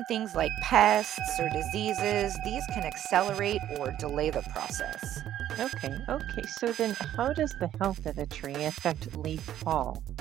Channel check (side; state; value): left; quieter; 11.7 dB